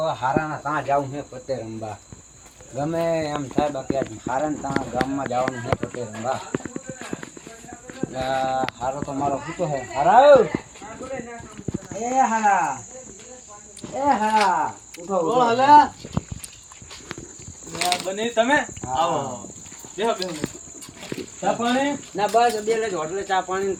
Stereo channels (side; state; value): both; identical; correlation 1.00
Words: હારાના ત્યાં જવું છે પતે રમવા. ગમે એમ થાય બાકી આજ હારાને ત્યાં ગામમાં જવાનું છે પતે રમવા. હારો તો મારો પૂતો છે. હારા એ હારા ઉઠો ઉઠો. હલા બને તમે આવો બેહો બેહો. ચા પાણી ના બસ બે લે હોટલે ચા પાણી